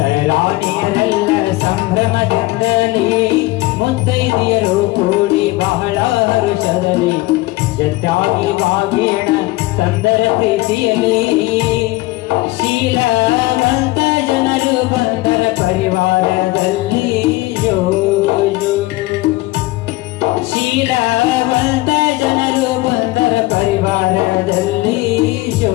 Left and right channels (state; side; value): quieter; right; 19.8 dB